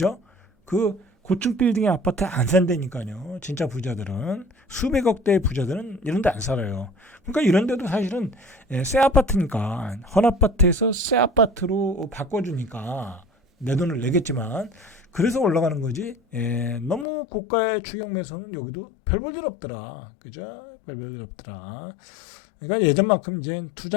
그 고층 빌딩의 아파트에 안 산다니까요. 진짜 부자들은 수백억 대의 부자들은 이런 데 안 살아요. 그러니까 이런 데도 사실은 새 아파트니까 헌 아파트에서 새 아파트로 바꿔주니까 내 돈을 내겠지만 그래서 올라가는 거지. 너무 고가의 추격 매수는 여기도 별 볼 일 없더라. 그죠? 별 볼 일 없더라. 그러니까 예전만큼 이제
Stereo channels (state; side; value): drops out; right; at 17.1 s